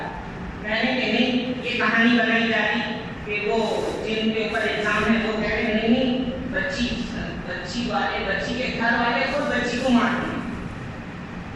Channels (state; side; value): identical; both; correlation 1.00